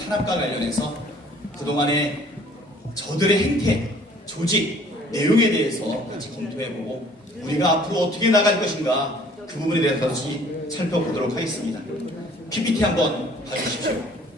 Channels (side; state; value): both; normal; correlation 0.55